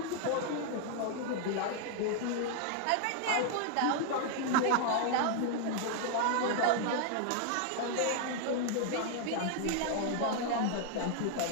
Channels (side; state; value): both; different; correlation 0.00